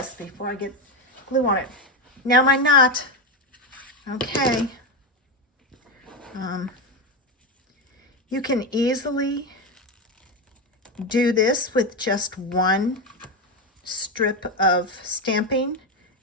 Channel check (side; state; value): both; normal; correlation 0.12